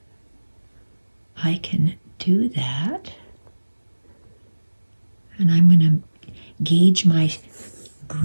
I can do that. And I'm gonna gauge my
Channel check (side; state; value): both; inverted; correlation -1.00